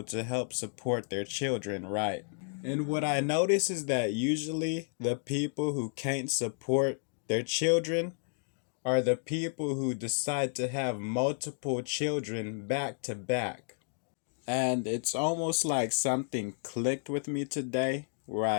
to help support their children, right? And what I notice is that usually the people who can't support their children are the people who decide to have multiple children back to back. And it's almost like something clicked with me today,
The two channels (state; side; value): silent; right; 57 dB below the other